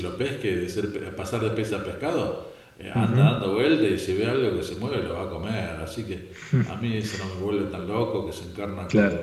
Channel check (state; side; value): identical; both; correlation 1.00